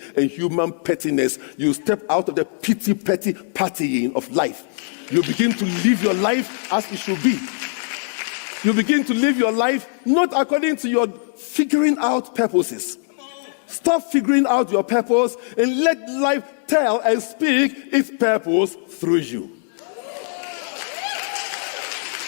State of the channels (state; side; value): silent; right; 64 dB below the other